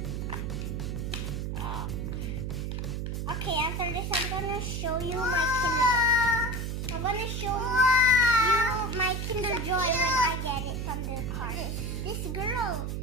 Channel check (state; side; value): noise; right; hum, 3 dB below the sound